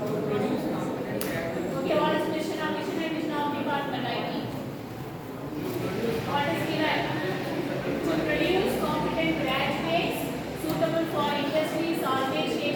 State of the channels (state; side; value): identical; both; correlation 1.00